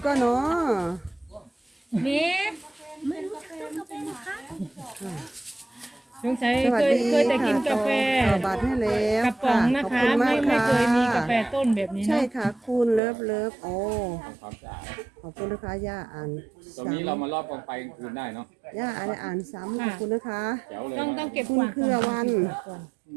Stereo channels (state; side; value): drops out; left; at 13.0 s